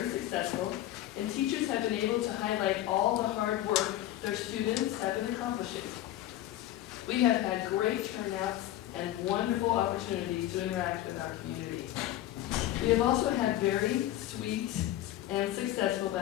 successful, and teachers have been able to highlight all the hard work their students have been accomplishing. We have had great turnouts and wonderful opportunities to interact with our community. We have also had very sweet and successful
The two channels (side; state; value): right; quieter; 13.8 dB